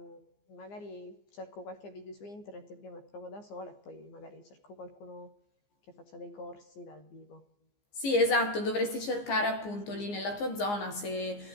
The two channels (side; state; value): right; late; 15 ms